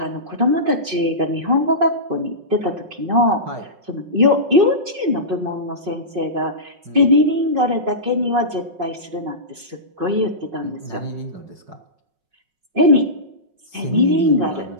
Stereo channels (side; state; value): left; late; 5.5 ms